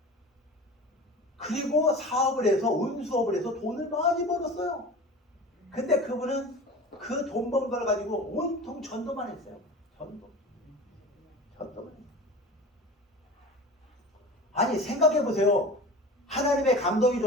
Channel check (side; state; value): both; normal; correlation 0.36